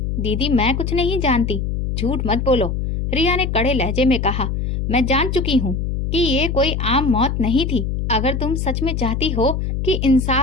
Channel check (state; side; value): noise; left; hum, 2 dB below the sound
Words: दीदी, मैं कुछ नहीं जानती। झूठ मत बोलो, रिया ने कड़े लहजे में कहा। मैं जान चुकी हूँ कि ये कोई आम मौत नहीं थी। अगर तुम सच में चाहती हो कि